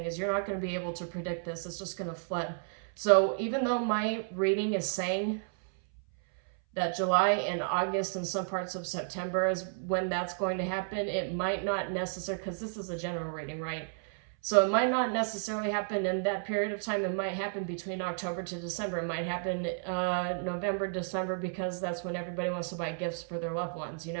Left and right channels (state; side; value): silent; left; 56 dB below the other